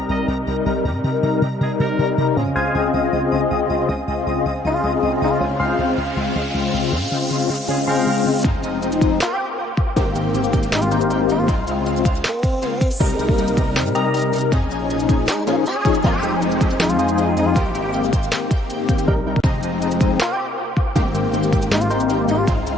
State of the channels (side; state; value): both; normal; correlation 0.71